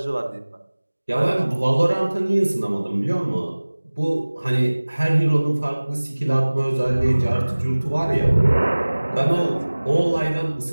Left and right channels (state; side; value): inverted; both; correlation -1.00